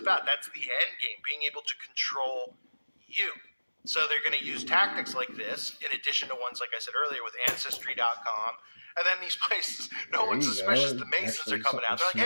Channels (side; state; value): both; inverted; correlation -1.00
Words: That's the end game, being able to control you. So they're going to use tactics like this, in addition to ones, like I said earlier, with Ancestry.com. And then these places, no one's suspicious. The Masons are coming out. They're